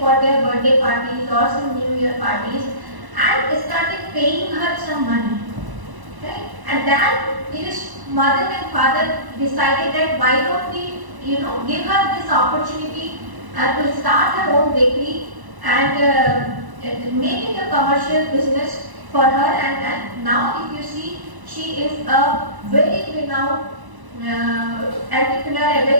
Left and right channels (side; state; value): left; late; 1.0 ms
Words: their birthday parties or some New Year parties, and started paying her some money. Right? And then his mother and father decided that why don't we, give her this opportunity to start her own bakery and make it a commercial business for her. And now, if you see, she is a very renowned entrepreneur, a